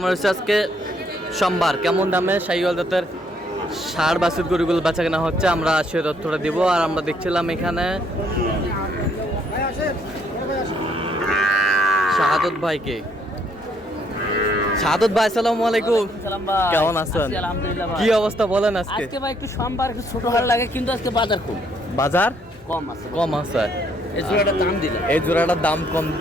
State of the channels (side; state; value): both; normal; correlation 0.69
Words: হচ্ছে আজকে সোমবার। কেমন দামে শাহিওয়াল জাতের ষাঁড় বাছুর গরুগুলো বেচা কেনা হচ্ছে আমরা সে তথ্যটা দিব। আর আমরা দেখছিলাম এখানে শাহাদত ভাইকে। শাহাদত ভাই আসসালামু আলাইকুম, কেমন আছেন? কি অবস্থা বলেন? আজকে ভাই একটু সোমবার একটু ছোট হাট লাগে, কিন্তু আজকে বাজার কম। বাজার কম আছে। এই জোড়াটার দাম দিলাম, এই জোড়াটার দাম কম